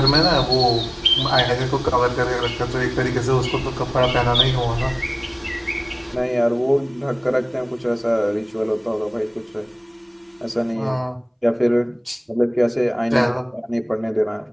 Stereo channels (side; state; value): both; identical; correlation 1.00